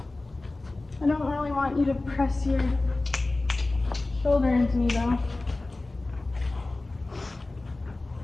I don't really want you to press your shoulder into me though.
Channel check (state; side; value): quieter; right; 3.0 dB